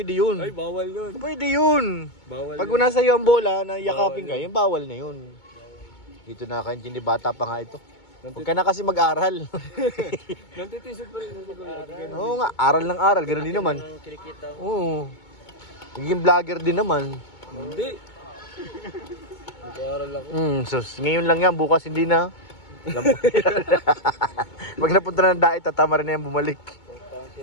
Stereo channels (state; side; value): late; right; 2.2 ms